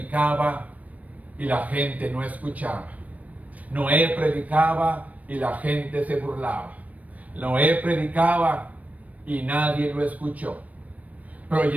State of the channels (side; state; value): left; late; 0.070 ms